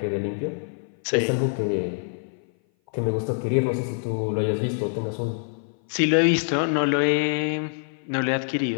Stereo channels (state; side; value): silent; right; 57 dB below the other